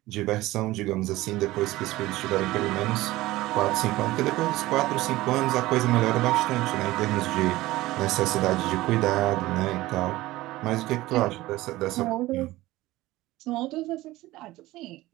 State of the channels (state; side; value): quieter; left; 17.8 dB